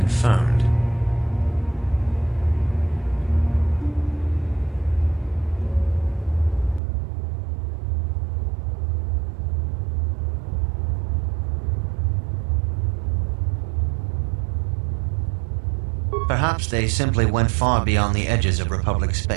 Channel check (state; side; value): drops out; left; at 6.8 s